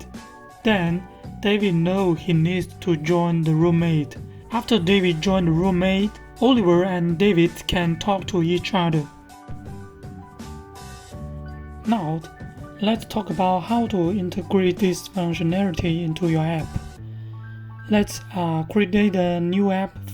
Then David knows he needs to join the roommate. After David joined the roommate, Oliver and David can talk to each other. Now, let's talk about how to integrate this functionality into your app. Let's create a new app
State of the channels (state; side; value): identical; both; correlation 1.00